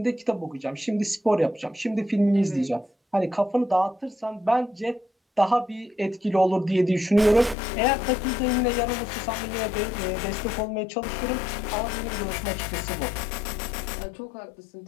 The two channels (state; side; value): drops out; right; at 7.6 s